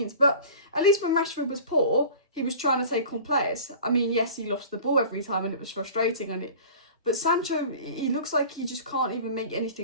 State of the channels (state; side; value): inverted; both; correlation -0.40